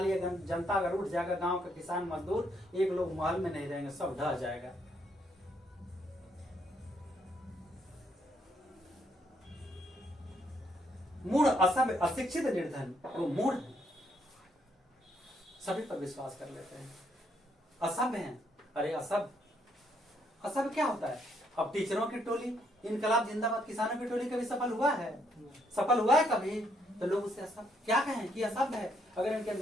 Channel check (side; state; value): both; normal; correlation 0.72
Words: जनता अगर उठ जाएगा, गांव के किसान मजदूर एक लोग महल में नहीं रहेंगे, सब ढह जाएगा। मूढ़, असभ्य, अशिक्षित, निर्धन, वो मूढ़ है, सभी पर विश्वास कर लेते हैं। असभ्य हैं। अरे असभ्य क्या होता है? अब टीचरों की टोली, इनकलाब जिंदाबाद, किसानों की टोली कभी सफल हुआ है? सफल हुआ है कभी? तो लोग उसे असभ्य क्या कहें कि असभ्य है। अगर इनके